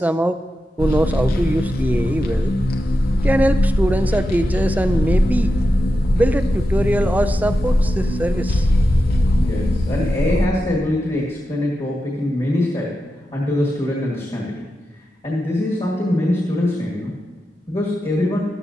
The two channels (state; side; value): normal; both; correlation 0.90